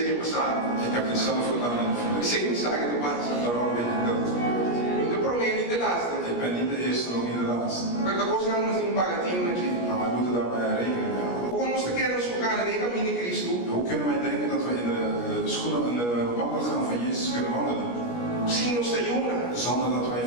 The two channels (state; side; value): late; right; 17 ms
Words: bestaan. Ik heb dit zelf gedaan in het Ik verleden. zeg niet zaken te passen. Daarom weet ik dat het gebeurt. De probleem niet de laatste. Ik ben niet de eerste, ook niet de laatste. Maar dat kost namelijk een pagatien natuurlijk. Maar wij moeten daarbij rekening mee houden. Hoe ons te kennen is elkaar in de cammine Christus. Hoe kunnen wij denken dat we in de schoenen en de wandelgang van Jezus kunnen wandelen? Sim, nos te juna. Zonder dat wij